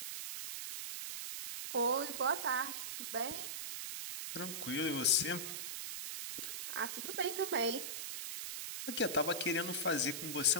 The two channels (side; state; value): right; noise; hiss, 5 dB below the sound